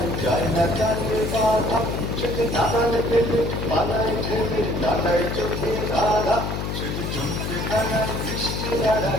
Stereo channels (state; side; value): noise; left; hum, 3 dB below the sound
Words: যায় না কানে বাধা, সেটি দাঁড়ালে পেলে পালায় ঠেলে দাঁড়ায় চোখে রাধা। সেটি জমিতে দাঁড়ায় বৃষ্টি